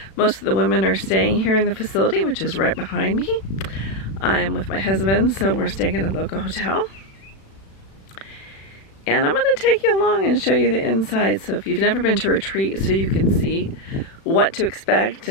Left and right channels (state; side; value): late; right; 36 ms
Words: Most of the women are staying here in the facility, which is right behind me. I am with my husband, so we're staying at a local hotel. And I'm going to take you along and show you the inside. So if you've never been to a retreat, so you can see what to expect